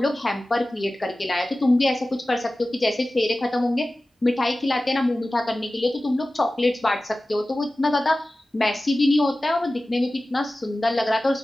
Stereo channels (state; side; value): normal; both; correlation 0.96